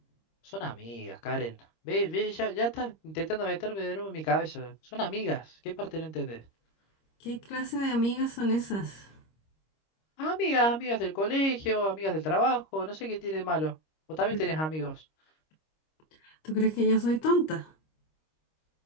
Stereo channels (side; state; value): right; late; 26 ms